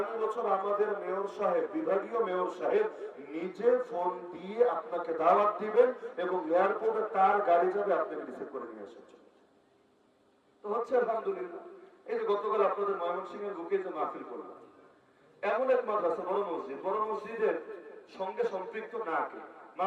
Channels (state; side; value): identical; both; correlation 1.00